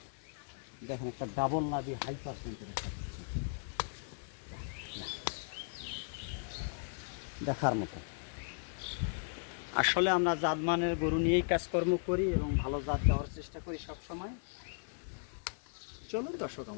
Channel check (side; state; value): right; silent; digital silence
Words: দেখেন একটা ডাবল নাভি হাই পার্সেন্টের একটা বাচ্চা, দেখার মতো। আসলে আমরা জাতমানের গরু নিয়েই কাজকর্ম করি এবং ভালো জাত দেওয়ার চেষ্টা করি সব সময়। চলুন দর্শক